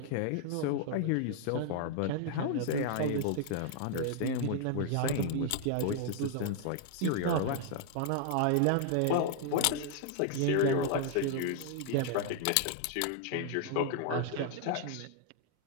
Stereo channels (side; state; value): both; different; correlation 0.00